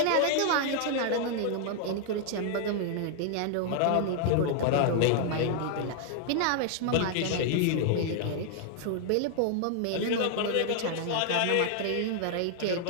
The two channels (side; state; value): both; different; correlation 0.00